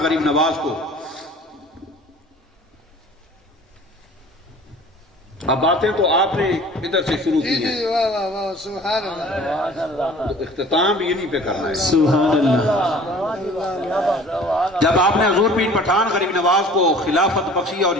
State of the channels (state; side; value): normal; both; correlation 0.47